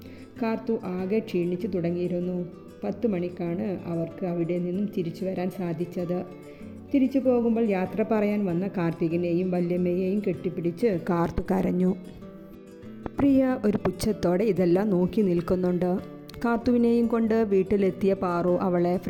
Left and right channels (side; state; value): both; identical; correlation 1.00